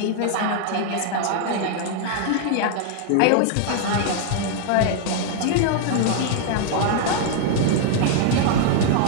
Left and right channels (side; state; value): both; different; correlation 0.00